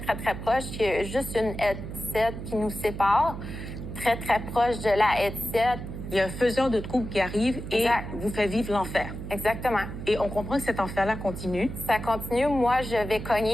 très proche. Il y a juste une headset qui nous sépare, très, très proche de la headset. Il y a un faiseur de troubles qui arrive et vous fait vivre l'enfer. Exactement. Et on comprend que cet enfer-là continue. Ça continue. Moi, je vais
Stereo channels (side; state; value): right; noise; hum, 8 dB below the sound